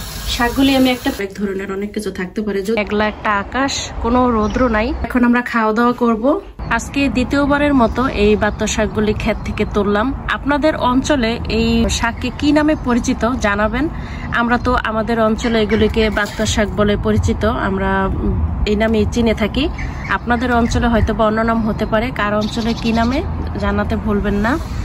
শাকগুলি আমি এক ধরনের অনেক কিছু থাকতে পারে, একলা একটা আকাশ, কোনো রৌদ্র নাই। এখন আমরা খাওয়া দাওয়া করব। আজকে দ্বিতীয়বারের মতো এই বাত্ত শাকগুলি ক্ষেত থেকে তুললাম। আপনাদের অঞ্চলে এই শাককে কি নামে পরিচিত জানাবেন। আমরা তো আমাদের অঞ্চলে এগুলিকে বাত্ত শাক বলে পরিচিত, আমরা এই নামে চিনে থাকি। আপনাদের অঞ্চলে হয়তো বা অন্য নাম হতে পারে, কার অঞ্চলে কি নামে জানাতে ভুলবেন না।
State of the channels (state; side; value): identical; both; correlation 1.00